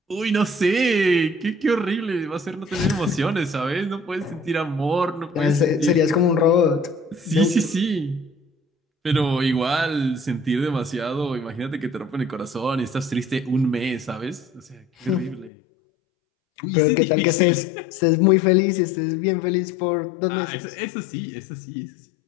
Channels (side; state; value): right; drops out; at 15.5 s